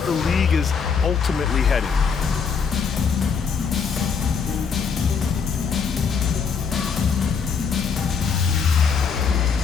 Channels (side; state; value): right; quieter; 6.1 dB